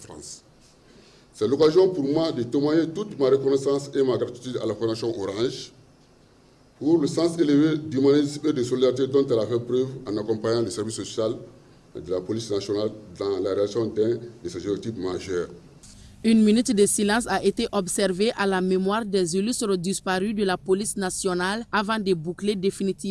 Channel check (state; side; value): identical; both; correlation 1.00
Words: C'est l'occasion pour moi de témoigner toute ma reconnaissance et ma gratitude à la Fondation Orange pour le sens élevé d'humanisme et de solidarité dont elle a fait preuve en accompagnant les services sociaux de la police nationale dans la réalisation d'un de ses objectifs majeurs. Une minute de silence a été observée à la mémoire des illustres disparus de la police nationale avant de boucler